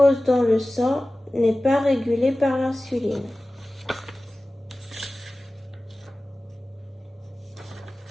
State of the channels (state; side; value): normal; both; correlation 0.97